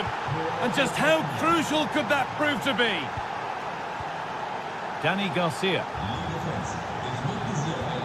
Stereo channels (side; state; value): both; identical; correlation 1.00